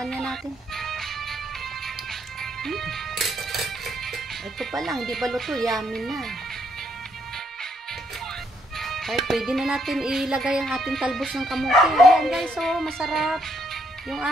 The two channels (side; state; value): both; normal; correlation 0.73